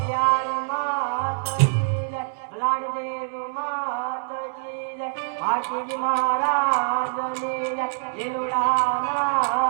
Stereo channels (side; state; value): left; silent; 62 dB below the other